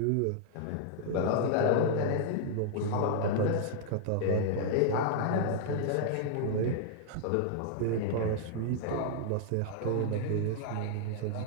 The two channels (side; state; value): both; different; correlation -0.01